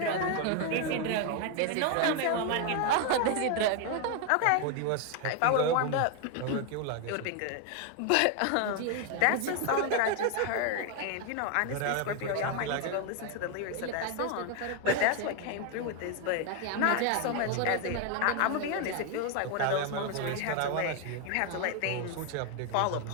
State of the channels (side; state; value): both; different; correlation 0.01